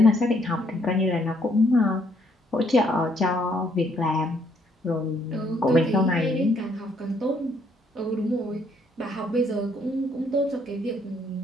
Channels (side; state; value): both; normal; correlation 0.69